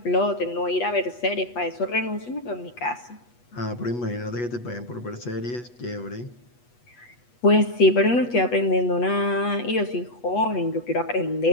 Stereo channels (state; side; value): late; right; 8.2 ms